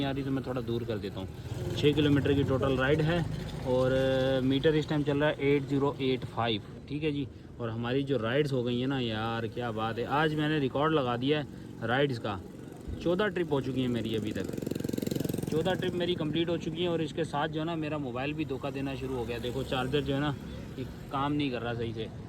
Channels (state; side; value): identical; both; correlation 1.00